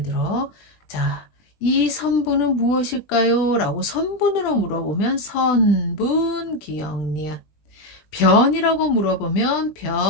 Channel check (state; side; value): late; right; 20 ms